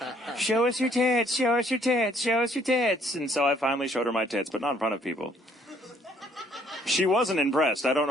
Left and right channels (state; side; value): normal; both; correlation 0.64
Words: Show us your tits, show us your tits, show us your tits. And so I finally showed her my tits, but not in front of people. She wasn't impressed. I don't